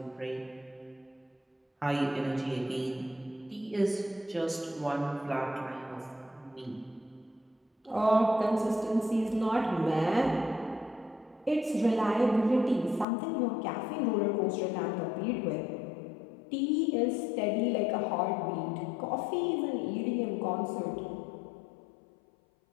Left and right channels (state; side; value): drops out; right; at 13.1 s